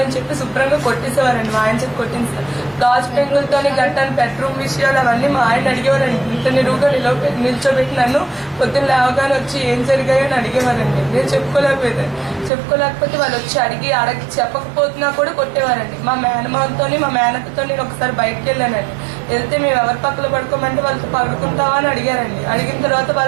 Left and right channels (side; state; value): left; drops out; at 12.5 s